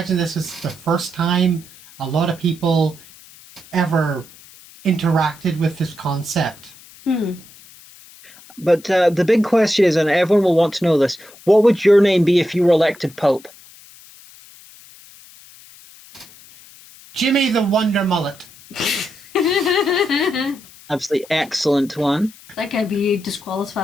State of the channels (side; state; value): left; noise; hiss, 22 dB below the sound